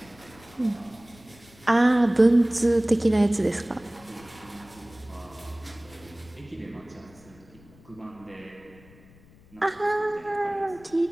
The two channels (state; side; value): noise; left; rumble, 25 dB below the sound